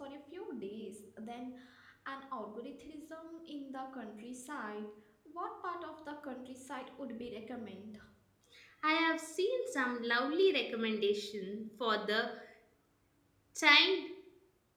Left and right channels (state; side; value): identical; both; correlation 1.00